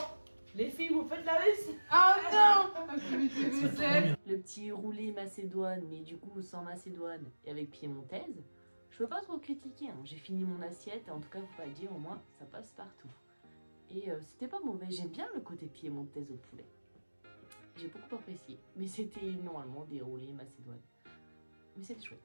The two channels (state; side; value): inverted; both; correlation -1.00